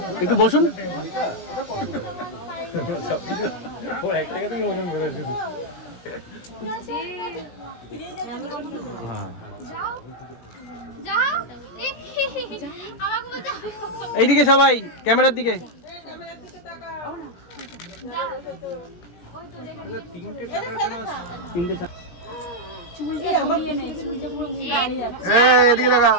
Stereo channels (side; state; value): right; late; 18 ms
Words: একটু বসুন। এইদিকে সবাই, ক্যামেরার দিকে। এদিকে দেখা